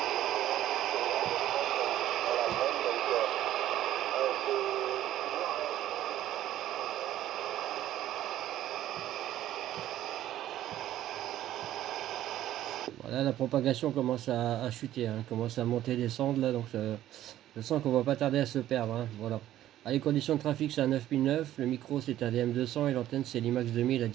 donc c'est toujours Voilà, la propagation commence à chuter, hein, commence à monter, descendre là, donc je sens qu'on va pas tarder à se perdre, hein, voilà. Ah, les conditions de trafic c'est un 9009, le micro c'est un DM200 et l'antenne c'est l'IMAX 2000 à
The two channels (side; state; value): left; quieter; 13.0 dB